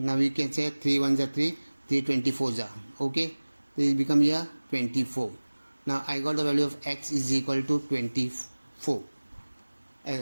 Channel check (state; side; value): inverted; both; correlation -1.00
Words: we can say 3 1s are 3, 3 24s are. Okay. This become here 24. Now I got the value of x is equal to 24.